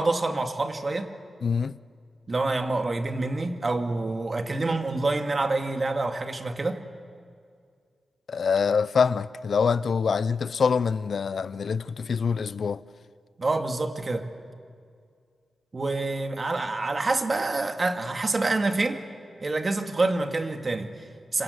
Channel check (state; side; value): normal; both; correlation 0.89